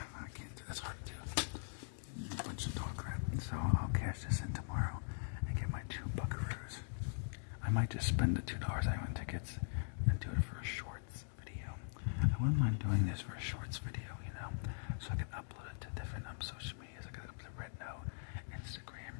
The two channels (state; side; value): silent; right; digital silence